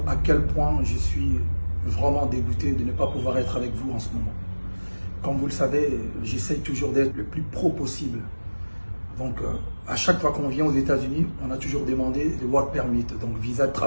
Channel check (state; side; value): inverted; both; correlation -1.00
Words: à quel point je suis vraiment dégoûté de ne pas pouvoir être avec vous en ce moment. Comme vous le savez, j'essaye toujours d'être le plus pro possible. Donc à chaque fois qu'on vient aux États-Unis, on a toujours demandé le work permit, donc visa de